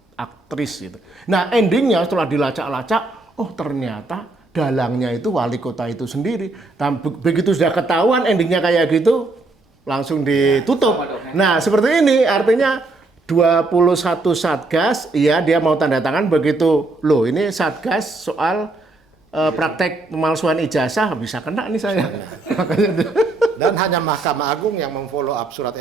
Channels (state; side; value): quieter; left; 3.1 dB